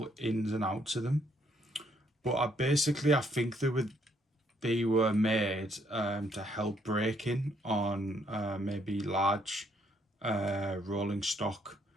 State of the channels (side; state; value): both; normal; correlation 0.70